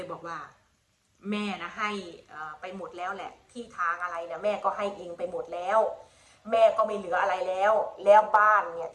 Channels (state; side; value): identical; both; correlation 1.00